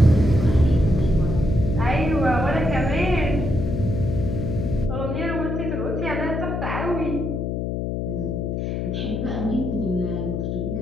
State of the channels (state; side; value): noise; left; hum, 2 dB below the sound